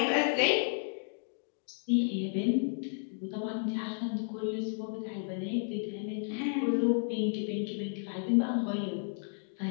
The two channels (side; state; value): right; silent; digital silence